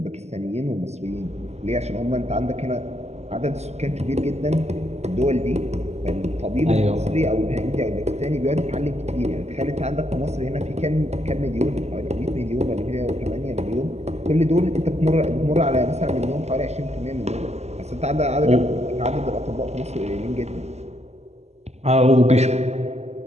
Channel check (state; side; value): late; left; 0.32 ms